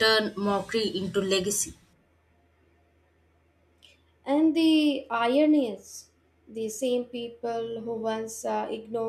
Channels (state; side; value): identical; both; correlation 1.00